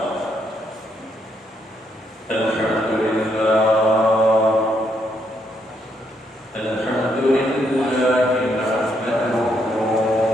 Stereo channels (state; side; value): normal; both; correlation 0.75